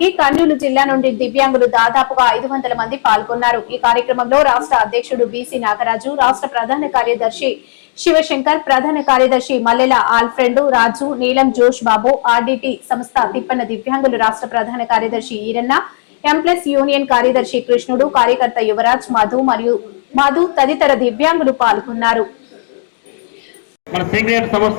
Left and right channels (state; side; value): silent; right; digital silence